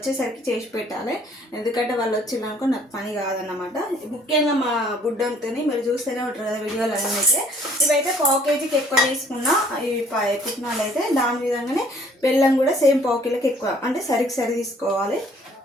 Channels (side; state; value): both; normal; correlation 0.59